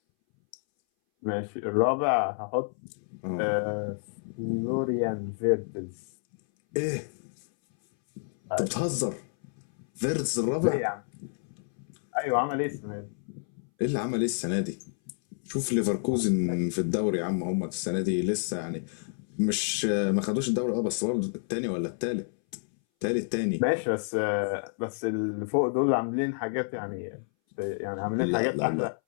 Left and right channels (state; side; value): silent; right; 58 dB below the other